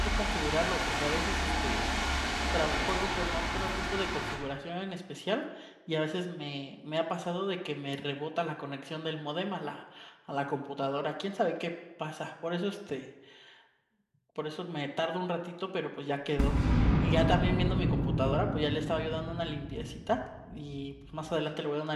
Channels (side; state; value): both; identical; correlation 1.00